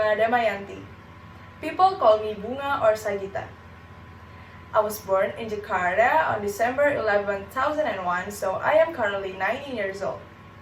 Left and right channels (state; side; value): identical; both; correlation 1.00